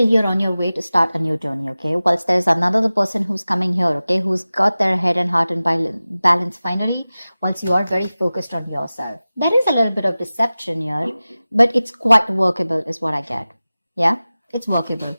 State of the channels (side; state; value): both; inverted; correlation -0.97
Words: you're on your way to start a new journey, okay? Whilst there's another person who's coming here, okay, who's got their head and heart in balance finally, once you are very focused on yourself. There is a little bit of deception here, but it's quite workable is what I get. Yeah, it's workable.